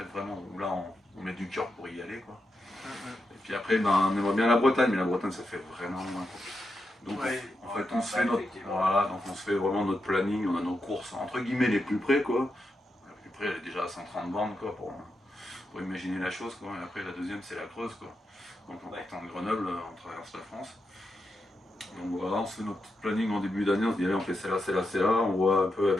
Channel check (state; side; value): normal; both; correlation 0.86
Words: vraiment, où là on met du cœur pour y aller, quoi. Et puis après, on aimerait bien la Bretagne, mais la Bretagne ça fait vraiment loin, quoi. Donc en fait on se fait donc on se fait vraiment notre planning, on a nos courses entre guillemets les plus près, quoi. La plus près elle est déjà à 130 bornes, quoi, pour imaginer la chose, quoi. Et après la deuxième c'est la Creuse, quoi. Donc en partant de Grenoble, on traverse la France. Donc voilà, on se fait notre petit planning en début d'année, on se dit allez on fait celle-là, celle-là, celle-là, on voit un peu